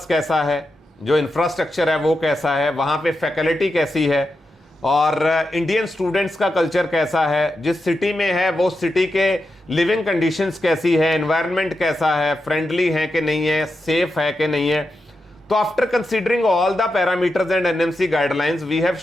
कैसा है, जो इंफ्रास्ट्रक्चर है वो कैसा है, वहाँ पे फैकल्टी कैसी है, और इंडियन स्टूडेंट्स का कल्चर कैसा है, जिस सिटी में है वो सिटी के लिविंग कंडीशंस कैसी है, एनवायरनमेंट कैसा है, फ्रेंडली है कि नहीं है, सेफ है कि नहीं है। तो after considering all the parameters and NMC guidelines we have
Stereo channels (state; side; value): normal; both; correlation 0.88